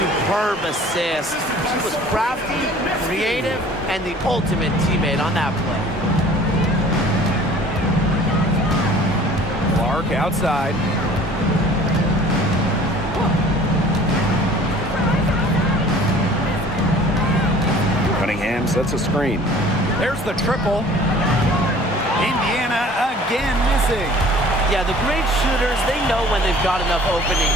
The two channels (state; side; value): normal; both; correlation 0.49